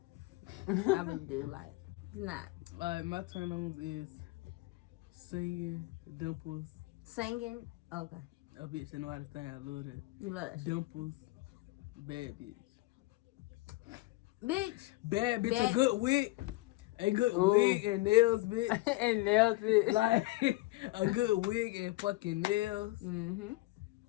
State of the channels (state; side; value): quieter; right; 20.6 dB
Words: I really do. Like, it's not. Like, my turn-ons is singing, dimples. Singing? Okay. A bitch that know how to sing. I love that. You love that shit. Dimples, bad bitch. Bitch. Bad bitch, Bad- a good wig. A good Ooh. wig and nails, bitch. And nails it. Like, a good wig and fucking nails. Mm-hmm.